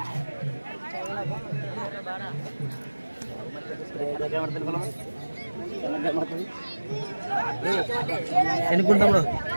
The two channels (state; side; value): inverted; both; correlation -1.00